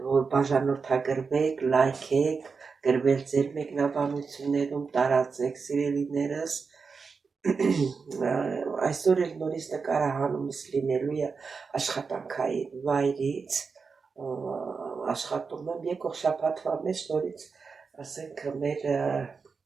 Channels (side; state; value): left; quieter; 5.1 dB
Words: որ բաժանորդագրվեք, լայքեք, գրվել ձեր մեկնաբանություններում, տարածեք սիրելիներս։ Այսօր էլ նորից նկարահանումս լինելու է աշխատանքային վայրից, աշխատում եմ եկող շաբաթվա մեջ նորից, ասենք